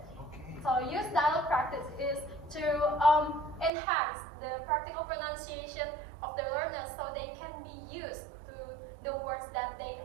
Okay. So use dialogue practice is to enhance the practical pronunciation of the learners so they can be used to the words that they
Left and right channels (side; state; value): left; drops out; at 3.7 s